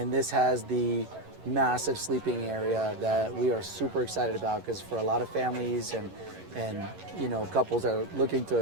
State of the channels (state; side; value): late; left; 11 ms